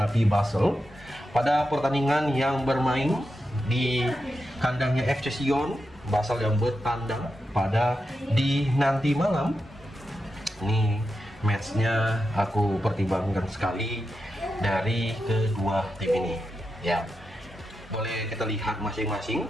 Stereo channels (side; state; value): both; normal; correlation 0.88